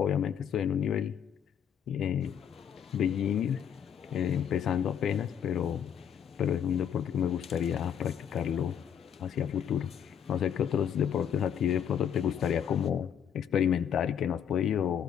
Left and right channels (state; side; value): quieter; right; 8.7 dB